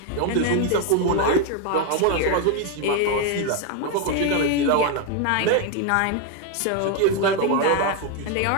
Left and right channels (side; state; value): both; different; correlation 0.01